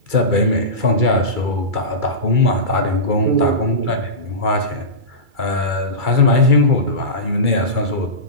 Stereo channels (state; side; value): late; left; 2.3 ms